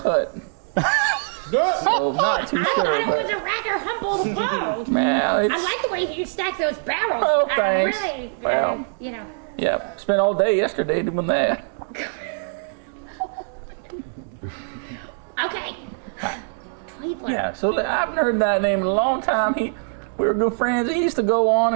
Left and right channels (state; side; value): silent; left; digital silence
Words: So not too I sure, thought it was but a rather humble abode. well, it's I like the way you stack those barrels. Oh, thanks. Really, Well. you know. yeah. Spent all day yesterday doing that. Okay. Tweedler. Yeah, so I haven't heard that name in a long time. We were good friends. He used to go on